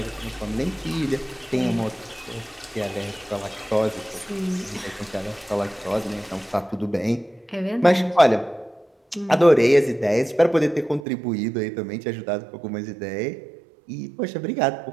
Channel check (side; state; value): left; drops out; at 11.1 s